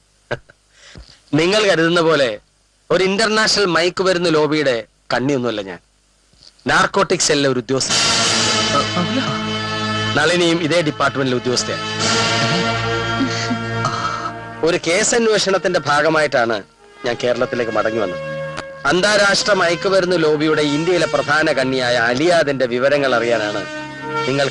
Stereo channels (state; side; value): identical; both; correlation 1.00